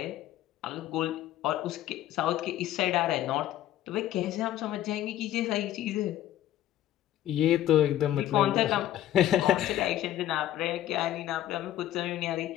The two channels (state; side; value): quieter; right; 12.8 dB